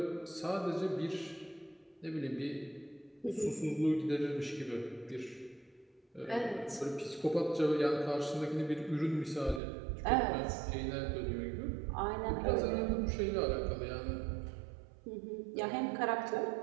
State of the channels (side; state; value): left; drops out; at 9.6 s